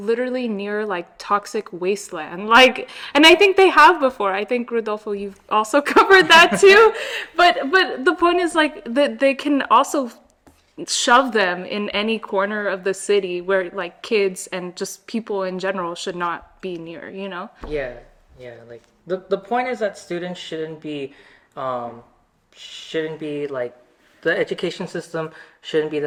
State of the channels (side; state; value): both; identical; correlation 1.00